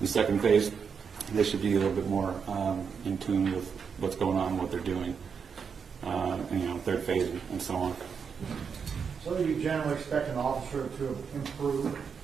second phase, they should be a little bit more in tune with what's going on, what they're doing. Third phase, and so on. So you generally expect an officer to improve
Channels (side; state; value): left; quieter; 6.3 dB